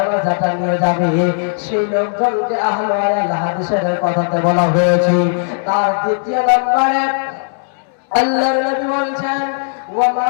নিয়ে যাবে, সেই লোকজনকে আহল আয়াল হাদিসের কথাতে বলা হয়েছে। তার দ্বিতীয় নম্বরে আল্লাহর নবী বলেছেন, ওয়া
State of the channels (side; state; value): right; silent; 66 dB below the other